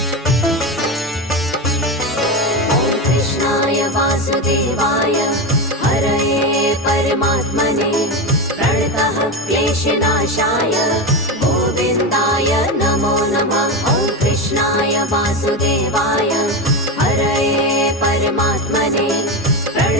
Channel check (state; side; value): normal; both; correlation 0.17